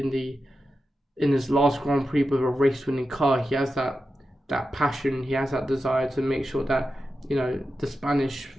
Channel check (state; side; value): normal; both; correlation 0.90